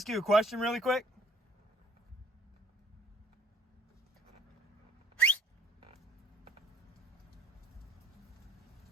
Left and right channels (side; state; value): both; normal; correlation 0.56